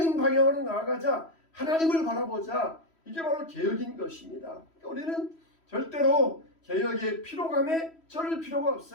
방향으로 나아가자. 하나님을 바라보자. 이게 바로 개혁인 것입니다. 우리는 절대로 개혁의 피로감에 쩔을 필요가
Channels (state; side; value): late; right; 3.1 ms